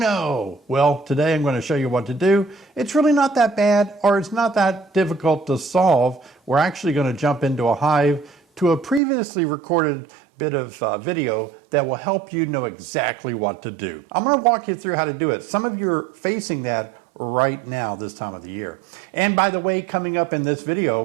Well, today I'm going to show you what to do. It's really not that bad, or it's not that difficult to solve. We're actually going to jump into a hive to a previously recorded bit of video that will help you know exactly what to do. I'm going to walk you through how to do it. Some of you are facing that right now this time of the year. And by the way, coming up in this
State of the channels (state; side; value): drops out; left; at 9.0 s